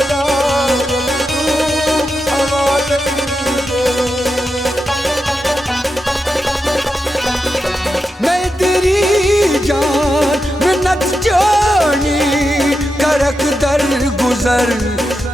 करक दर गुजर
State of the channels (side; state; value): both; normal; correlation 0.88